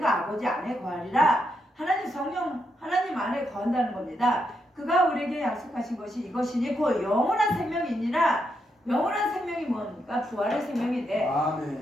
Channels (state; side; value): normal; both; correlation 0.81